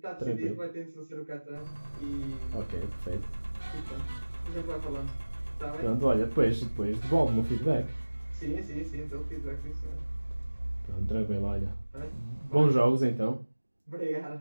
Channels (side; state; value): both; inverted; correlation -1.00